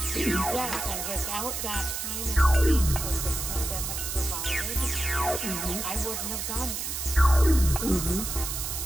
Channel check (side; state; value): right; noise; hiss, 4 dB below the sound